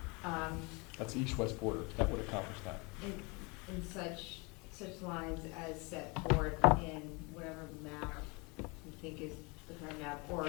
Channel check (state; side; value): quieter; right; 28.8 dB